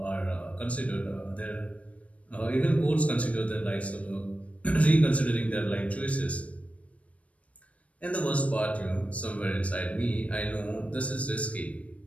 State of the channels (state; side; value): late; right; 0.065 ms